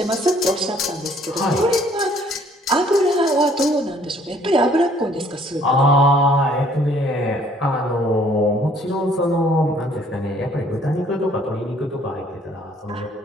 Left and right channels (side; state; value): both; normal; correlation 0.60